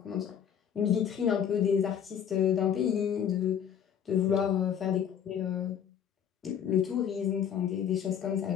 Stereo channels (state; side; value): quieter; right; 8.6 dB